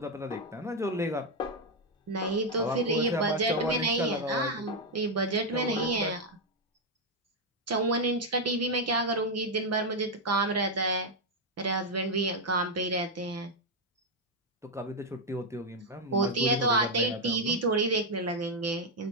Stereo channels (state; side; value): normal; both; correlation 0.01